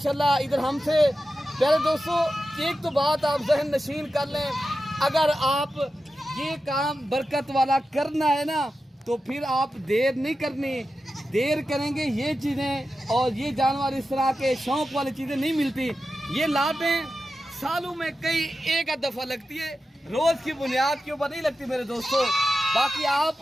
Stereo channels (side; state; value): both; normal; correlation 0.91